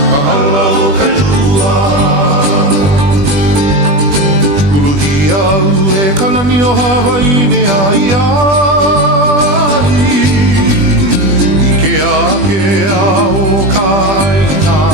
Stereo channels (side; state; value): left; late; 20 ms